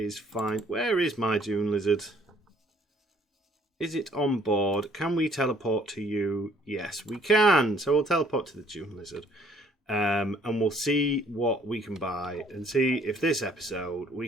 fine. Where is my Dune Lizard? Is it on board? Can we teleport to you? Yes, we can. So we'll teleport to the Dune Lizard. And we'll see what we can buy, and see if this episode we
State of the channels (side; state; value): both; normal; correlation 0.61